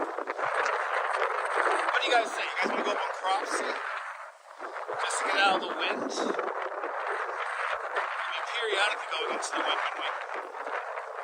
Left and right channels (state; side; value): identical; both; correlation 1.00